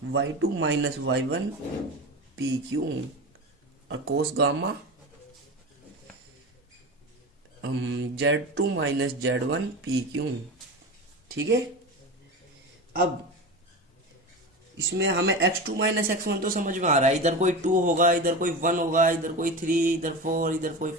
y2 minus y1 P Q. और cos gamma z2 minus z1 P Q. ठीक है। अब इसमें हमें x2 माइनस x1 तो समझ में आ रहा है, इधर कोई 2 होगा, इधर कोई 1 होगा, इधर कोई 3, इधर 4, इधर कोई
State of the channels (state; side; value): normal; both; correlation 0.27